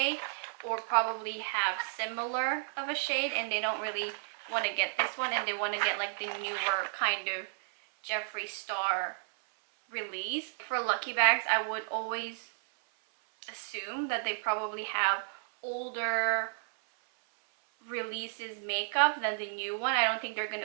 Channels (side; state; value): left; silent; 56 dB below the other